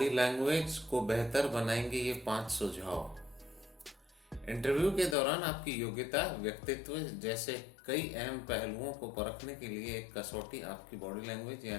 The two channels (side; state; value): right; drops out; at 5.2 s